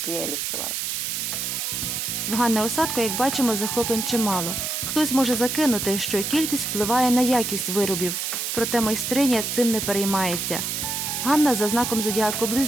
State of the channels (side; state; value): right; noise; hiss, 2 dB below the sound